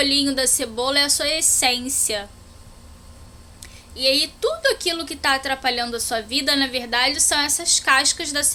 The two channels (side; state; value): both; identical; correlation 1.00